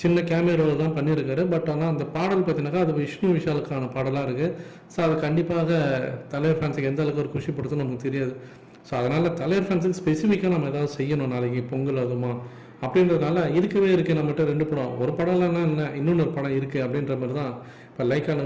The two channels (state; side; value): identical; both; correlation 1.00